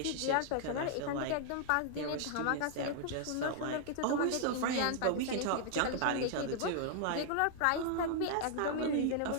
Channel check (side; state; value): both; different; correlation -0.01